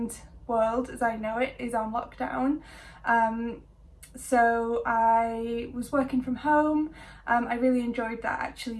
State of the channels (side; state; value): both; identical; correlation 1.00